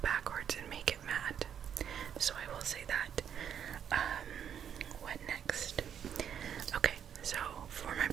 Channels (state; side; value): quieter; left; 8.6 dB